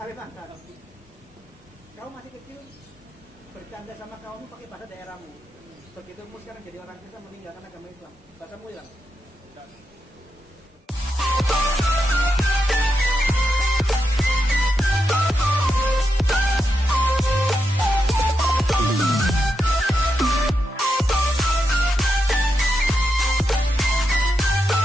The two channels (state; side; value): normal; both; correlation 0.85